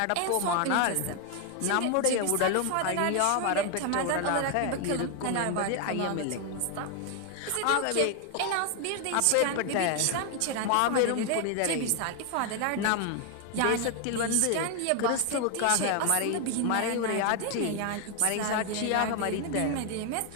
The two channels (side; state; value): both; different; correlation 0.00